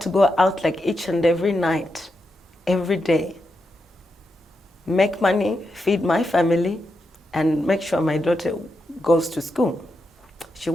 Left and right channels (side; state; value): both; normal; correlation 0.85